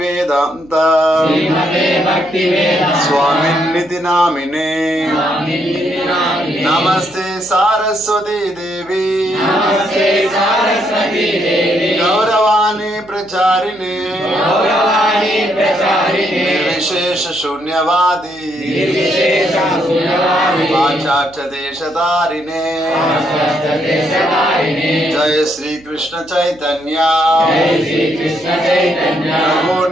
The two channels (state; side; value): noise; right; hum, 26 dB below the sound